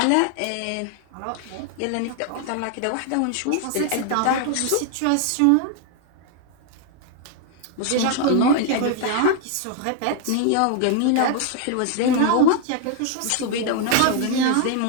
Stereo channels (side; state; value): both; different; correlation 0.00